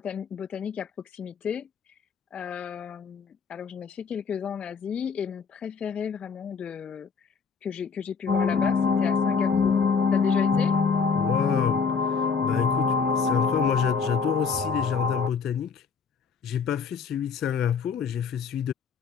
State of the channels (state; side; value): quieter; right; 5.7 dB